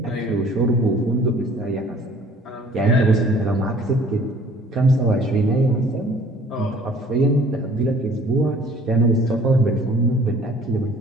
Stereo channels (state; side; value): normal; both; correlation 0.53